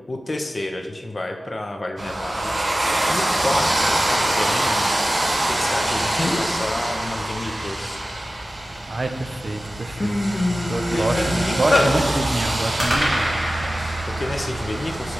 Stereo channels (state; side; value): normal; both; correlation 0.95